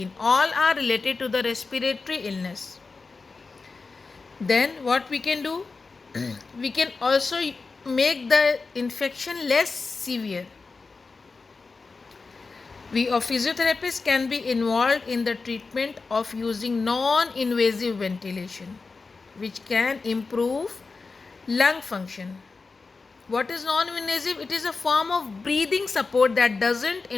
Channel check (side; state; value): right; quieter; 4.2 dB